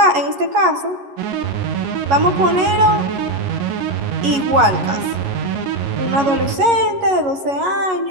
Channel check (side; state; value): left; late; 11 ms